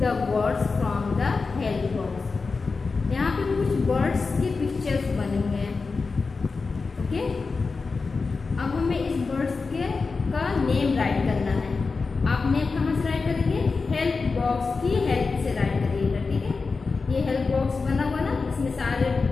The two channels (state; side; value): quieter; right; 4.3 dB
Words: words from the help box. यहाँ पे कुछ बर्ड्स के पिक्चर्स बने हुए हैं. ओके, अब हमें इस बर्ड्स के का नेम राइट करना है. आप नेम कहाँ से राइट करेंगे? हेल्प बॉक्स की हेल्प से राइट करिएगा. ठीक है, ये हेल्प बॉक्स बना हुआ ना, इसमें सारे